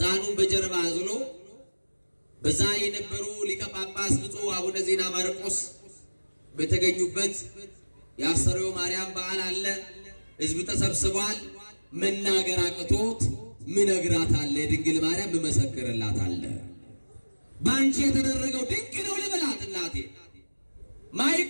በጀርባ አዝሎ በዛ የነበሩ ሊቀ ጳጳስ ብፁዕ አቡነ ዜና ማርቆስ በተገኙበት የአስተርእዮ ማርያም በዓል አለ። ሕዝብ ተሰብስቧል። መናገር አቅቶት ምነግራት አለ፣ ድንግል ማርያም መመሰክርላት አለ። ባንቺ የተደረገው ድንቅ ነው ልበላት እናቴ።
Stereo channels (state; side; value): inverted; both; correlation -1.00